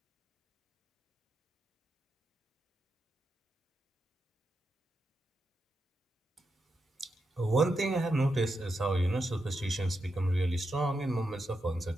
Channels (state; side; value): normal; both; correlation 0.86